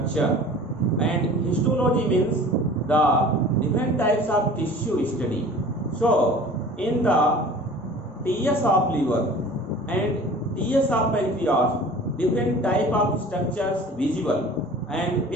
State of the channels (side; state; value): both; normal; correlation 0.43